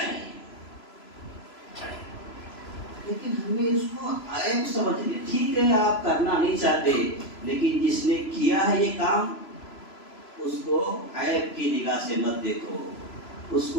لیکن ہمیں اس کو عیب سمجھنے، ٹھیک ہے آپ کرنا نہیں چاہتے، لیکن جس نے کیا ہے یہ کام اس کو عیب کی نگاہ سے مت دیکھو، اس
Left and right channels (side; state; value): right; late; 3.0 ms